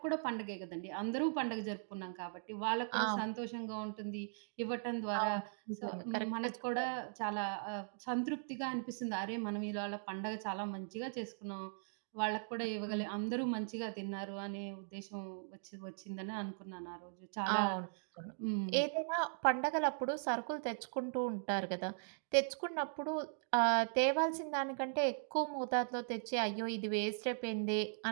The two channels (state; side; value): silent; left; digital silence